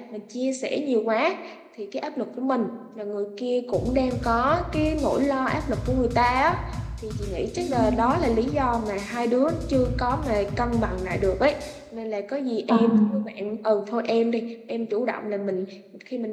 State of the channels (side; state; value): both; identical; correlation 1.00